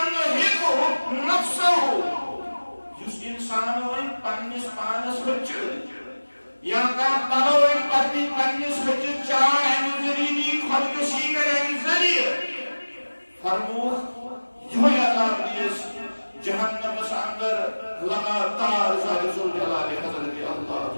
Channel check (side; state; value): both; inverted; correlation -1.00